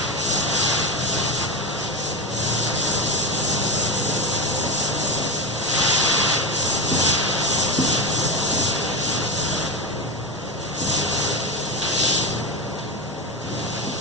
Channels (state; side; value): normal; both; correlation 0.17